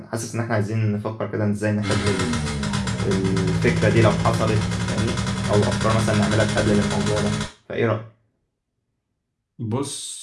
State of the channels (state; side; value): identical; both; correlation 1.00